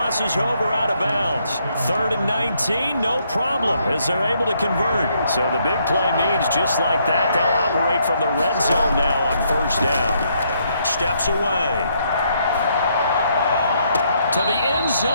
over out of bounds. 3rd and 19, no problem, as they're able to convert. So the big play means just like that, they'll operate from the red zone now on 1st down. Steps away to the end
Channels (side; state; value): both; inverted; correlation -0.72